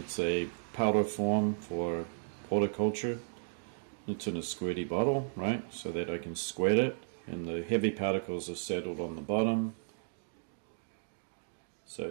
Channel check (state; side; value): silent; left; digital silence